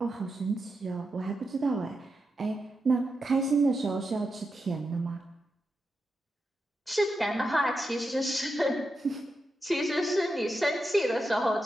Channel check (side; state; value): both; normal; correlation 0.87